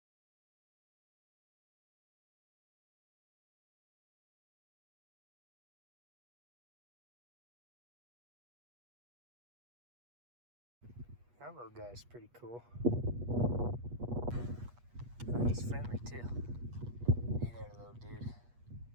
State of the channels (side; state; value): left; late; 8.3 ms